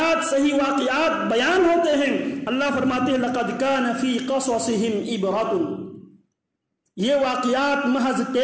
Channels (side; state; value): both; identical; correlation 1.00